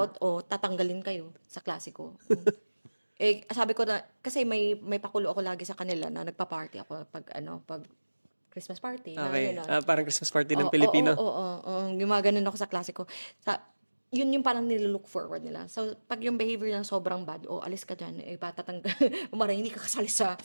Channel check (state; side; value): inverted; both; correlation -1.00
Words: o tatanggalin kayo sa klase ko. Sabi ko na, kasi may pakulo ako lagi sa kanila na nagpa-party ako pag Christmas party. Okay. Na, Parang Christmas party ng Oo, Pilipino. oo. Gumaganon ako sa klase ko. Yun yung parang nililook forward nila. So, pag yung behavior na sobrang bad, alis ka dyan, patatanggal, umaray, hindi ka kasali sa